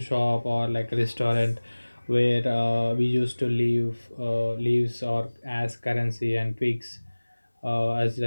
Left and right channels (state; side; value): inverted; both; correlation -1.00